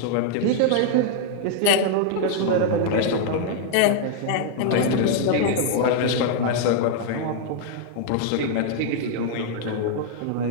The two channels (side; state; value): both; different; correlation 0.00